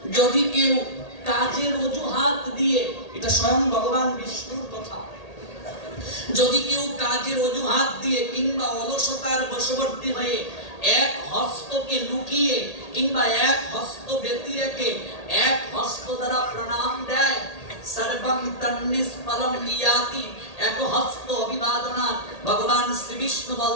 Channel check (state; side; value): late; right; 1.8 ms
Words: যদি কেউ কাজের অজুহাত দিয়ে, এটা স্বয়ং ভগবান বিষ্ণুর কথা, যদি কেউ কাজের অজুহাত দিয়ে কিংবা অলসতার বশবর্তী হয়ে এক হস্তকে লুকিয়ে কিংবা এক হস্ত ব্যতি রেখে এক হস্ত দ্বারা প্রণাম দেয়, সর্বং তন্নিষ্ফলং ইয়াতি, এক হস্ত অভিবাদনা, ভগবান শ্রী বিষ্ণু